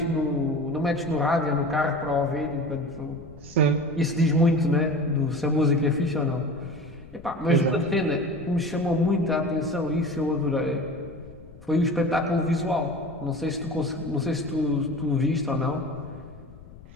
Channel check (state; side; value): noise; left; rumble, 20 dB below the sound